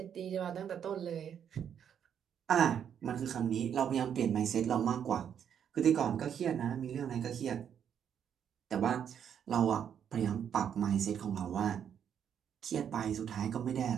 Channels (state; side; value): quieter; left; 8.5 dB